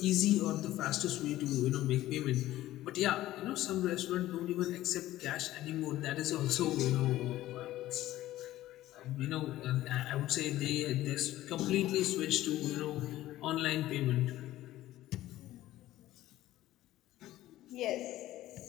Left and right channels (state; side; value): quieter; right; 15.0 dB